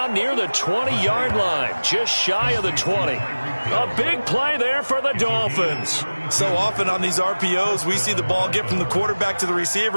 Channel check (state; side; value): inverted; both; correlation -1.00